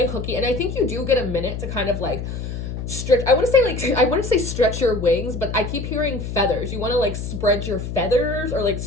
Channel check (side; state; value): left; noise; hum, 6 dB below the sound